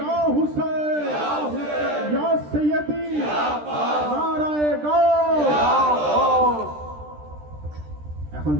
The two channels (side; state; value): left; late; 13 ms